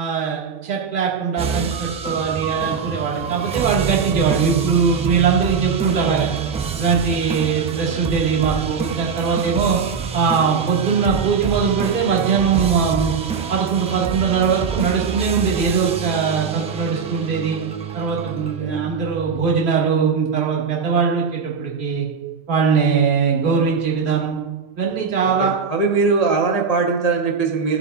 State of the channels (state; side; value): quieter; left; 5.8 dB